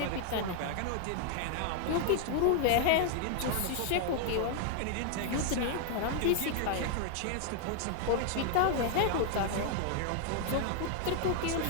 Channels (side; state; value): both; different; correlation 0.00